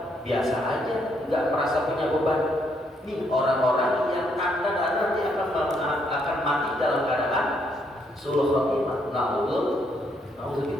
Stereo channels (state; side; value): normal; both; correlation 0.73